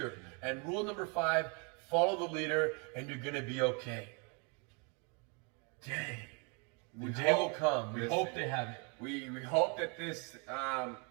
And rule number 5, follow the leader and you're gonna be okay. Dang. The day will come. We hope they have it. We hope that this,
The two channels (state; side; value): quieter; left; 34.7 dB